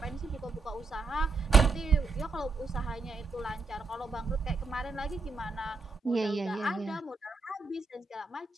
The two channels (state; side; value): quieter; left; 4.1 dB